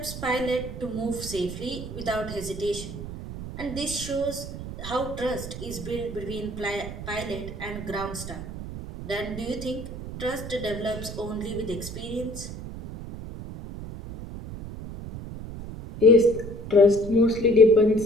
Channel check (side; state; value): right; noise; rumble, 10 dB below the sound